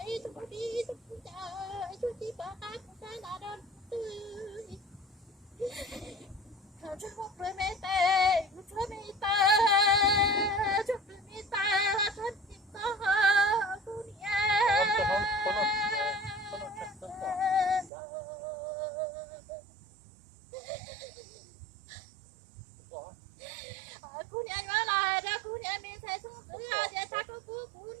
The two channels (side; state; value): left; drops out; at 17.9 s